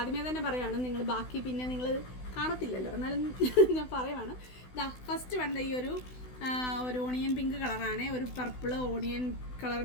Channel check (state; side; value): late; right; 16 ms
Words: തന്നെ പറയുകയാണ്, നിങ്ങൾ ബാക്കി പിന്നെ നിങ്ങൾ കാണത്തില്ലല്ലോ, എന്നാലും ഞാൻ പറയുവാണ്. ഫസ്റ്റ് വേണ്ട ഈ ഒരു ഓണിയൻ പിങ്ക് കളറാണ്, ഒരു പർപ്പിൾ ഓണിയൻ കളർ